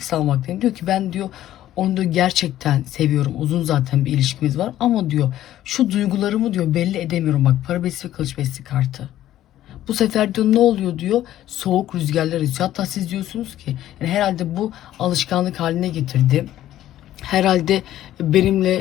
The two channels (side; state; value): right; quieter; 13.1 dB